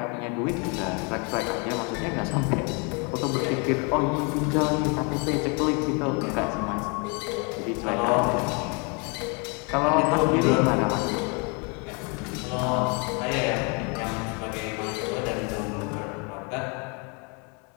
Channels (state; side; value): quieter; right; 33.4 dB